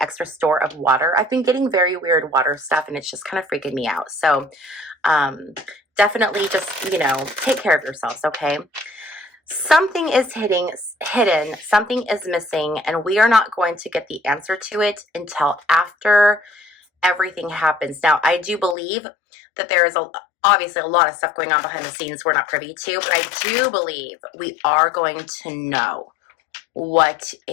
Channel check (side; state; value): right; drops out; at 18.8 s